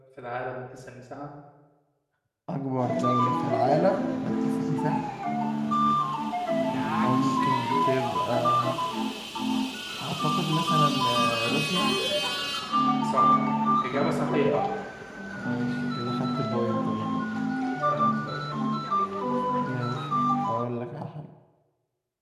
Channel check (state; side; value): identical; both; correlation 1.00